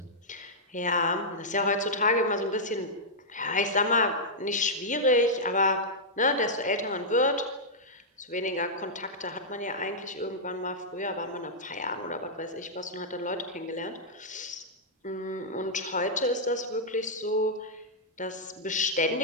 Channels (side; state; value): both; normal; correlation -0.09